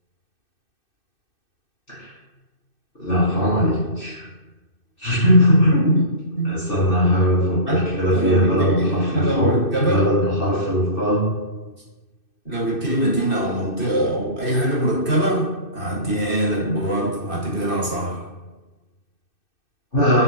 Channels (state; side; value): late; right; 2.6 ms